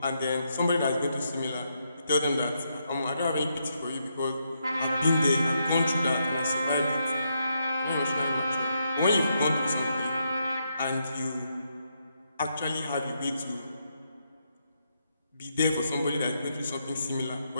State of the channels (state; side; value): inverted; both; correlation -0.80